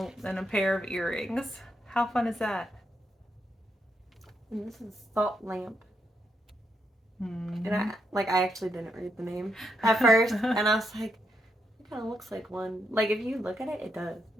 pair of earrings. How fun is that? And this is Salt Lamp. Mm-hmm. And I actually didn't read the name at first. And I was like, it kind of looks like one. Like, if you look at it, it does.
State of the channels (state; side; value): normal; both; correlation 0.80